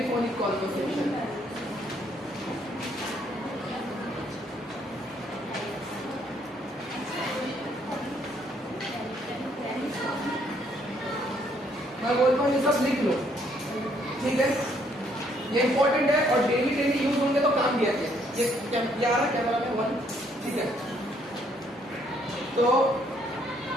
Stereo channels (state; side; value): normal; both; correlation 0.68